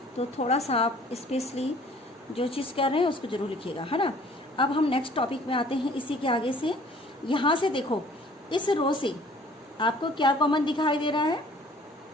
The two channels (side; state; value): both; normal; correlation 0.53